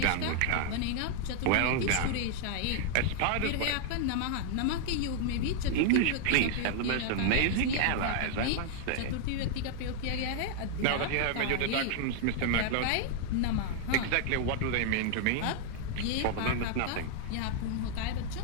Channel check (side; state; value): both; different; correlation 0.00